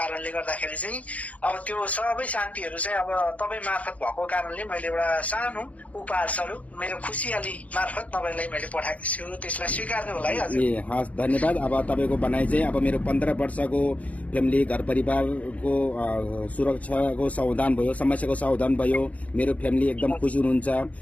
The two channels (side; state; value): right; late; 0.069 ms